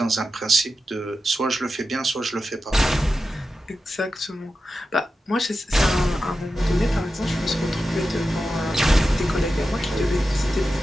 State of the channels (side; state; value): both; normal; correlation 0.91